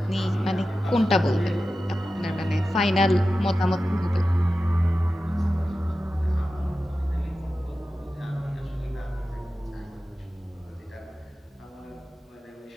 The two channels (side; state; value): both; normal; correlation 0.93